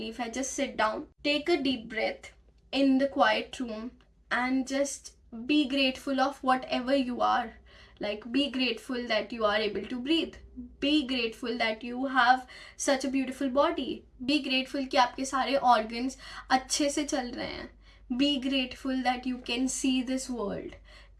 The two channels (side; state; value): both; identical; correlation 1.00